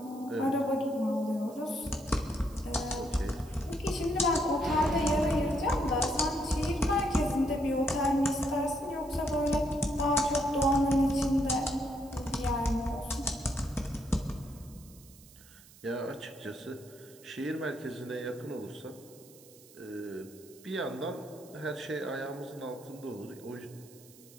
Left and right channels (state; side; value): noise; right; hiss, 23 dB below the sound